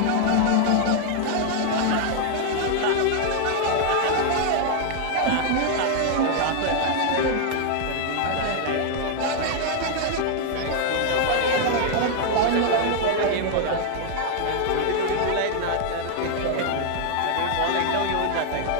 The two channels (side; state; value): both; different; correlation 0.00